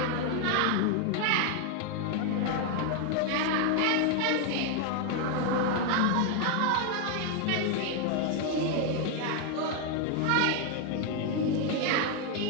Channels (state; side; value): different; both; correlation 0.01